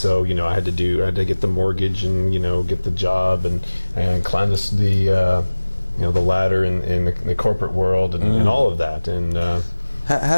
I had to get the mortgage and get the job and climb the ladder in the corporate world and all of that. And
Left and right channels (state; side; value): inverted; both; correlation -1.00